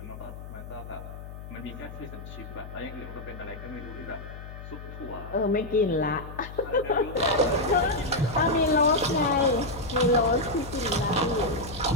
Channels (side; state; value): left; noise; hum, 12 dB below the sound